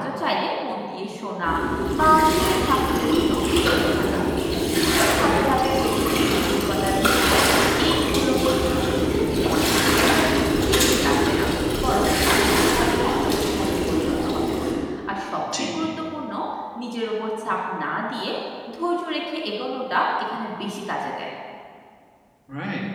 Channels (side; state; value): both; identical; correlation 1.00